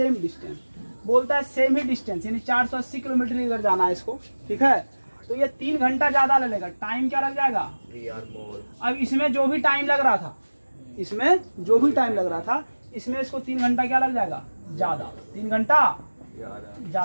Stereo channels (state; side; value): inverted; both; correlation -1.00